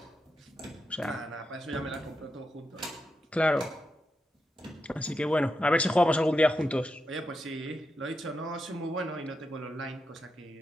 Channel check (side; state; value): both; normal; correlation 0.86